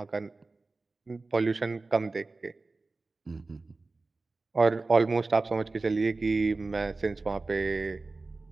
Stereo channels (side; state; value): left; quieter; 3.5 dB